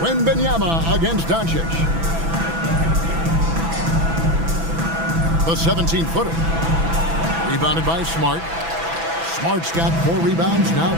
Wembanyama against Doncic. The 17-footer. Rebounded by Smart. Smart's got 4 rebounds now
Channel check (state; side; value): late; left; 6.0 ms